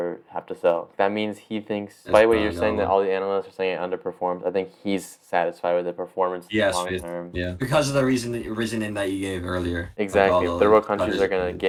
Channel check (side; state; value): both; identical; correlation 1.00